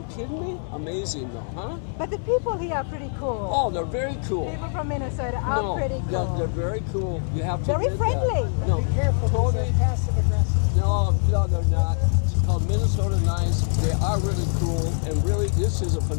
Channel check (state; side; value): silent; right; 63 dB below the other